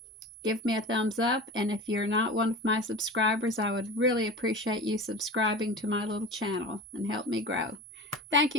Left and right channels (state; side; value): normal; both; correlation 0.33